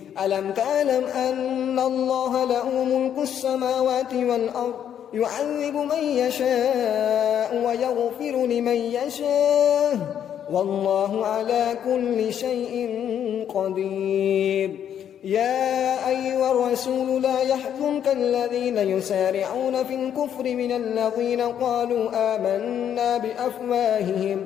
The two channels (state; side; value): quieter; right; 9.5 dB